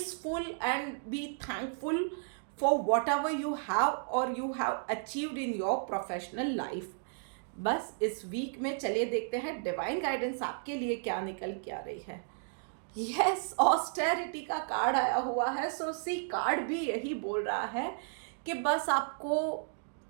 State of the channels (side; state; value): left; silent; digital silence